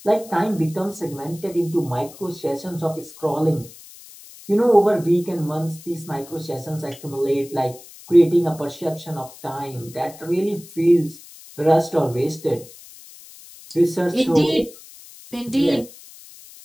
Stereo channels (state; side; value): noise; left; hiss, 19 dB below the sound